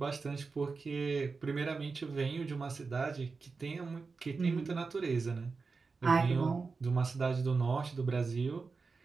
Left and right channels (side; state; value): left; quieter; 4.5 dB